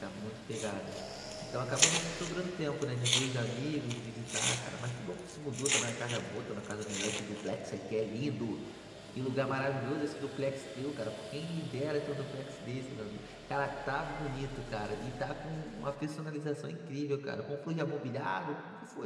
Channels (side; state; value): both; identical; correlation 1.00